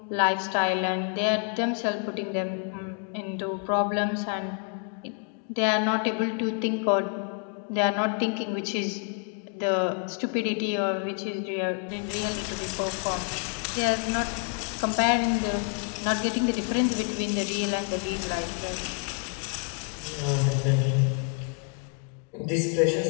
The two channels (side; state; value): right; quieter; 39.0 dB